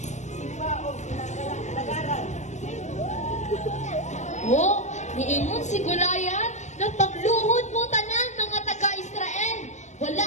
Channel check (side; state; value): right; late; 0.34 ms